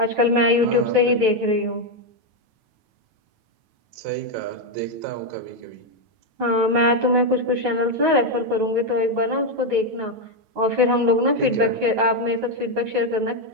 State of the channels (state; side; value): late; left; 9.2 ms